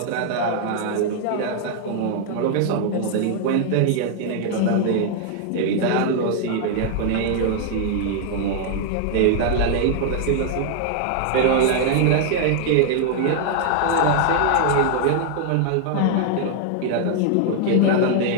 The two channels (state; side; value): different; both; correlation 0.00